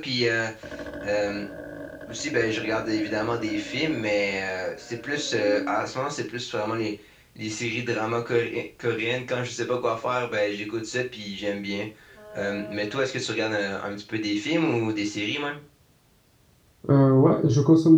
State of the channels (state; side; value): identical; both; correlation 1.00